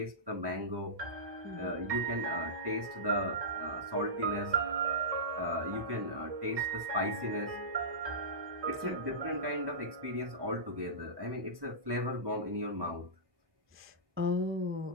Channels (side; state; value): left; late; 1.1 ms